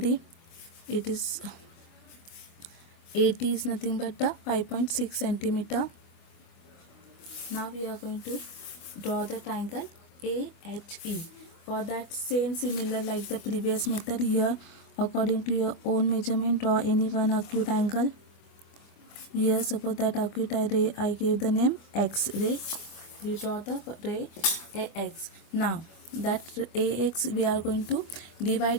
It is AT is nothing but the 5.6 centimeter. Now we are going to draw the triangle AHE. For that same similar like the previous method, here according to your own measurement, draw any one acute angle. Here suppose that acute ray I gave the name X ray. We draw the ray AX. Now that AX we are going to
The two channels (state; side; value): late; right; 25 ms